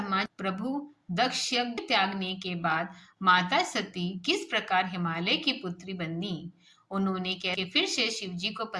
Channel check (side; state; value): both; identical; correlation 1.00